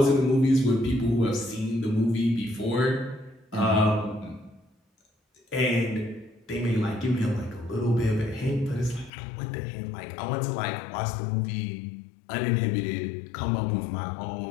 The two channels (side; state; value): right; drops out; at 9.1 s